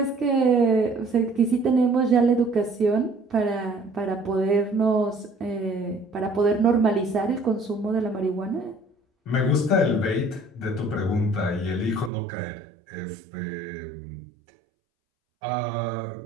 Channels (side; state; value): left; drops out; at 12.1 s